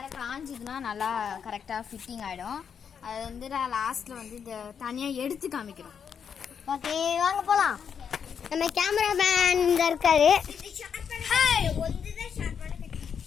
காஞ்சிதுன்னா நல்லா கரெக்டாக ஃபிட்டிங் ஆகிடும். அது வந்து நான் லாஸ்ட்டில் வந்து இந்த தனியாக எடுத்து காமிக்கிறோம். ஓகே வாங்க போகலாம். நம்ம கேமராமேன் இந்த இருக்காரு.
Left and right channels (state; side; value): quieter; right; 7.3 dB